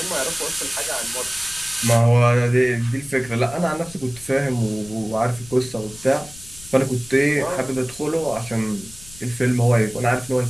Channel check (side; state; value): left; noise; rumble, 19 dB below the sound